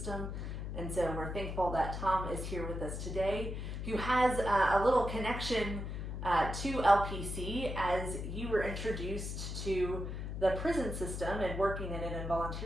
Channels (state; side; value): noise; left; hum, 5 dB below the sound